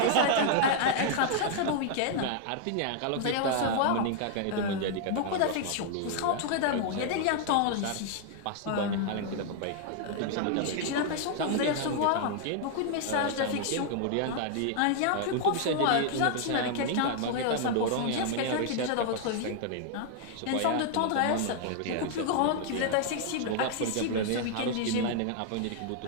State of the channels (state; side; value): different; both; correlation 0.00